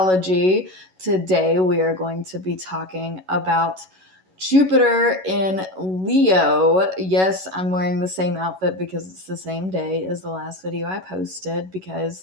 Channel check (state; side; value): late; left; 11 ms